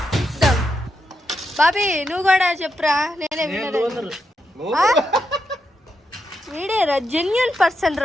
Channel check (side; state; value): both; normal; correlation 0.84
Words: బాబీ నువ్వు కూడా చెప్పురా. నేనే విన్నర్. వీడేరా జెన్యూన్ పర్సన్